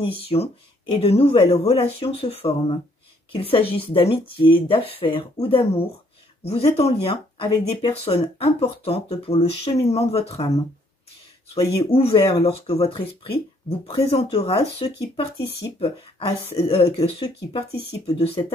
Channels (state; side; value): normal; both; correlation 0.66